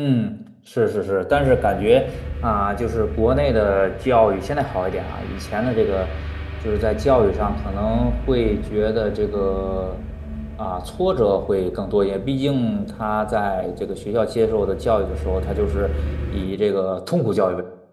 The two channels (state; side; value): identical; both; correlation 1.00